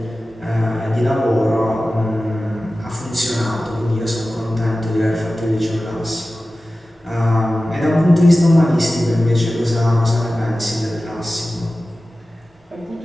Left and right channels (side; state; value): both; normal; correlation 0.95